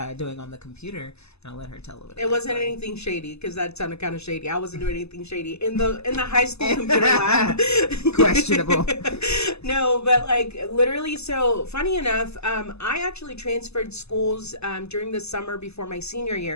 doing on the computer, and I'll let her tell a little bit. It wasn't anything shady, because that sounded kind of shady. I wasn't doing anything shady in the high school computer lab. Questionable. No, but literally, so funny enough, I actually transferred schools during the summer before my senior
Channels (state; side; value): late; right; 0.79 ms